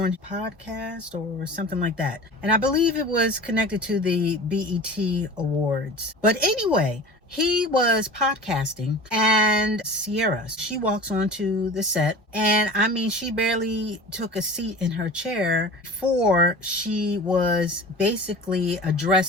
a podcast or something like that. And I believe it was connected to the BET Awards. But anyway, he was podcasting, and Ciara, she walks onto the set, and I mean, she barely took a seat in her chair before she was basically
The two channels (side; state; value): both; normal; correlation 0.37